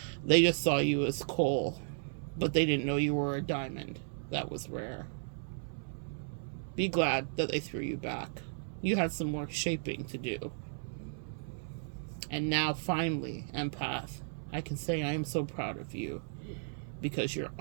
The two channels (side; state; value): left; silent; 55 dB below the other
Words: they just saw you as coal. But they didn't know you were a diamond. That was rare. Be glad that they threw you back. You had some more shaping to do. And now, finally, empath, I can say I am so proud of you, because you're